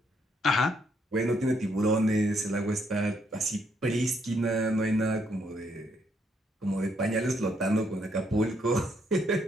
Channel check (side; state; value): both; normal; correlation 0.73